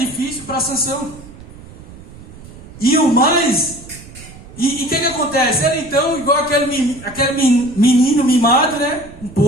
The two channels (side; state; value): right; noise; rumble, 18 dB below the sound